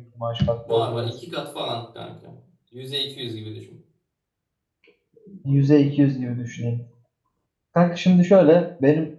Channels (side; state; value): both; identical; correlation 1.00